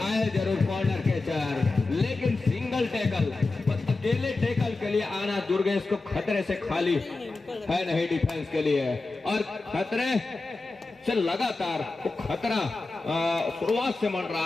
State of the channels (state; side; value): quieter; right; 3.5 dB